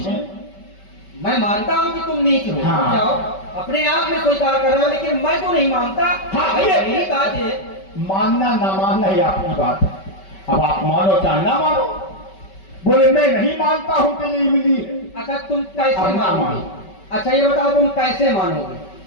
हैं। मैं मानता हूँ कि तुम नीच हो, हाँ। जाओ अपने आप में स्वीकार कर रहे हो, लेकिन मैं तो नहीं मानता। हाँ, भाई ये- यही बात है। मानना ना मानना ही आपकी बात है। अब आप मानो चाहे ना मानो। बोले मैं नहीं मानता हूं कि ये इमली है। अच्छा तुम कैसे अब ना मानोगे? मानो। अच्छा ये बताओ तुम कैसे मानोगे?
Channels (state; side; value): late; right; 5.2 ms